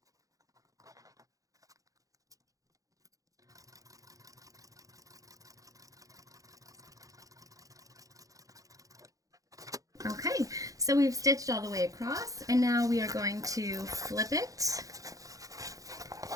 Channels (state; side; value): late; left; 0.17 ms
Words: Okay, so we've stitched all the way across, and now we are going to flip it.